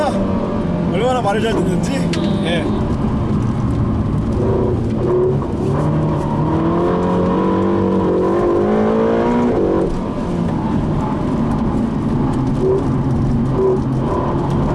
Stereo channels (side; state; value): both; identical; correlation 1.00